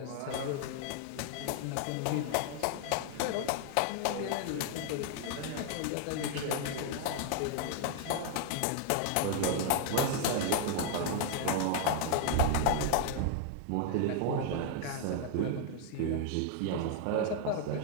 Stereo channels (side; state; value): both; different; correlation 0.00